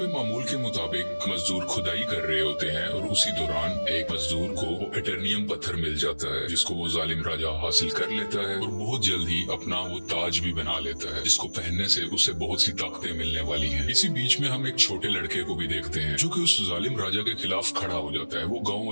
मामूल के मुताबिक मजदूर खुदाई कर रहे होते हैं और उसी दौरान एक मजदूर को एटर्नियम पत्थर मिल जाता है, जिसको वो जालिम राजा हासिल कर लेता है और बहुत जल्द ही अपना वो ताज भी बना लेता है, जिसको पहनने से उसे बहुत सी ताकतें मिलने वाली है। इसी बीच में हम एक छोटे लड़के को भी देखते हैं जो कि उस जालिम राजा के खिलाफ खड़ा हो जाता है। वो गाँव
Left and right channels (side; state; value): both; inverted; correlation -1.00